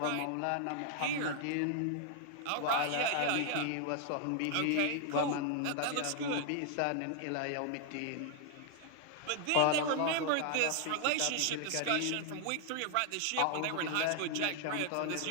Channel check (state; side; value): different; both; correlation 0.00